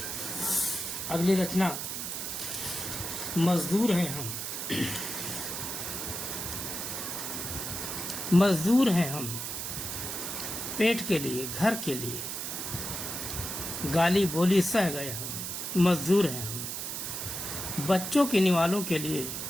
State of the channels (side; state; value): right; noise; hiss, 4 dB below the sound